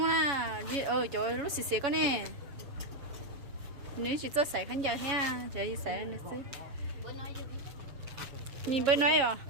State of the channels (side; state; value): left; late; 7.2 ms